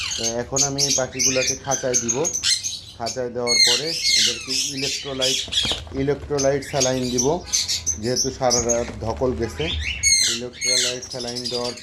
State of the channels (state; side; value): identical; both; correlation 1.00